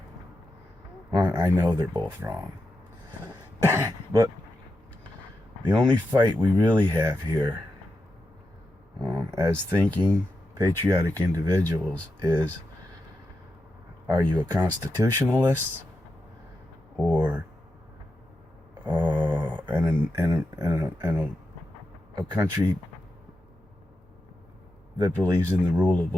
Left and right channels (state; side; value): normal; both; correlation 0.88